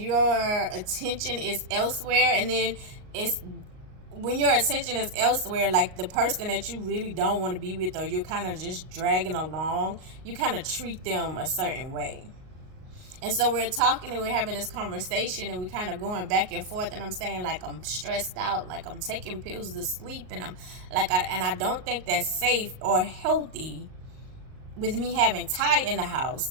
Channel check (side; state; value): left; late; 38 ms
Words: attention is elsewhere. And then it's when your attention is elsewhere, like the person that you really don't want to be with, or you're kind of just dragging along, you kind of treat them a certain way. And so we're talking and we're having this conversation and we're kind of going back and forth, and I'm saying, like, I'm stressed out, like I'm taking pills to sleep, and I'm like, I don't think that's safe or healthy with me having Ty in the house.